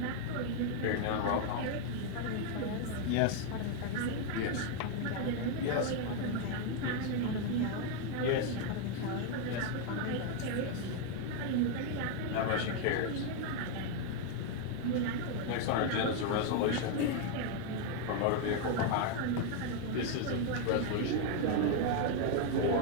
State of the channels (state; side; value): different; both; correlation 0.01